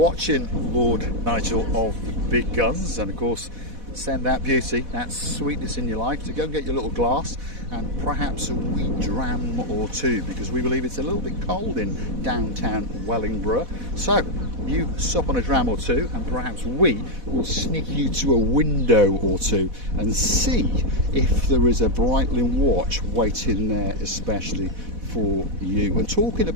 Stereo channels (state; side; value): late; left; 4.1 ms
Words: Lord Nigel of the Big Guns, and of course send that beauty, that sweetness in your life, to go and get your little glass and perhaps a wee dram or two, because we believe it's a little bit cold in downtown Wellingborough. So you sup on a dram or two, and perhaps we will sneak you to a window or two and see if there is a Brightling watch waiting there especially for you. And talking